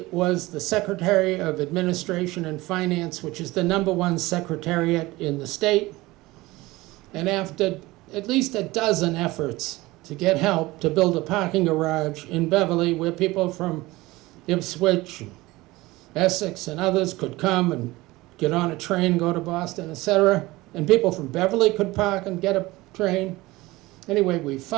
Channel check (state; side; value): quieter; left; 20.0 dB